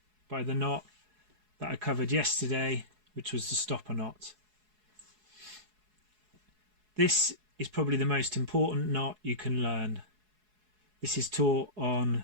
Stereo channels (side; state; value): left; late; 4.7 ms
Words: by the knot that I covered yesterday, which was the stopper knot. This is probably the most important knot you can learn. This is taught on